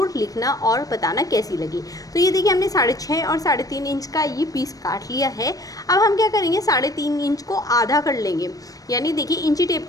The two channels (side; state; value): right; late; 0.18 ms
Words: लिखना और बताना कैसी लगी। तो ये देखिए हमने 6.5 और 3.5 इंच का ये पीस काट लिया है। अब हम क्या करेंगे, 3.5 इंच को आधा कर लेंगे, यानी देखिए इंची टेप